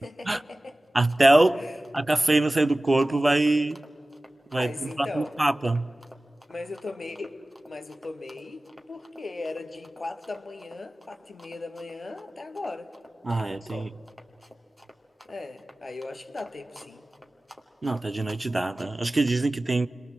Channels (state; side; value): normal; both; correlation 0.97